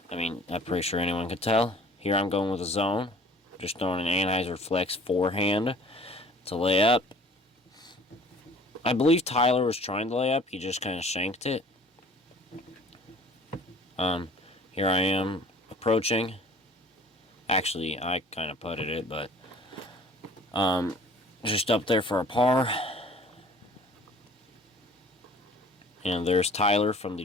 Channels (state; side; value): normal; both; correlation 0.50